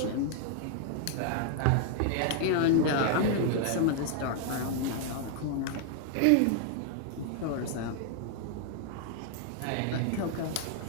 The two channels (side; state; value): both; different; correlation 0.00